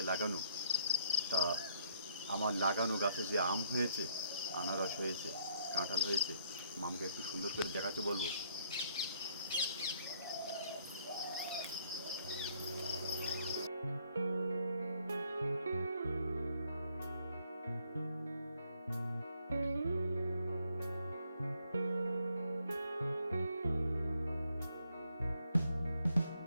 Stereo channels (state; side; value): inverted; both; correlation -0.69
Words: লাগানো। তা আমার লাগানো গাছে যে আম হয়েছে, আনারস হয়েছে, কাঁঠাল হয়েছে, মামকে একটু সুন্দর করে দেখাতে বলবো।